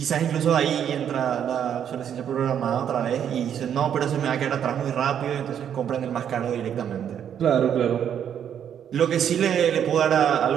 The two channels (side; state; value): left; quieter; 9.0 dB